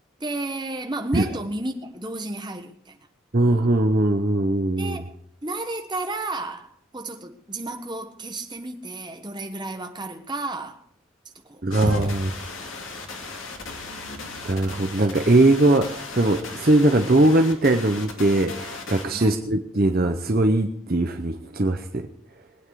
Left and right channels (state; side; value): normal; both; correlation 0.63